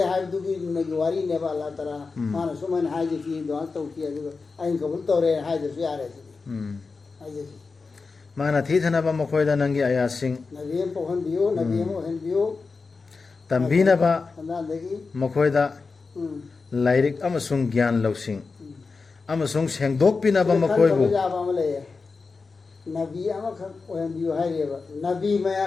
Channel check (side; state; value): right; quieter; 4.4 dB